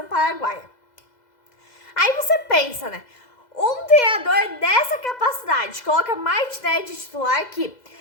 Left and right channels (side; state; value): right; late; 2.0 ms